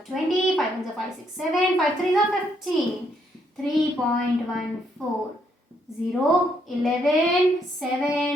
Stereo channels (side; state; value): both; normal; correlation 0.73